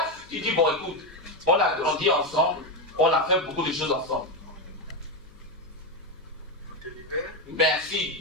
tu dis, bon, écoute, on a grandi ensemble, on a fait beaucoup de choses ensemble.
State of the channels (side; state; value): left; noise; hum, 25 dB below the sound